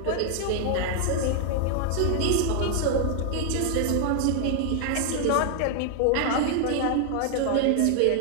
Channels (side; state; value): both; different; correlation 0.00